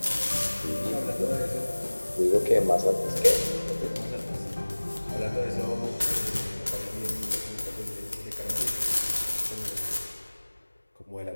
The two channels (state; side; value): inverted; both; correlation -1.00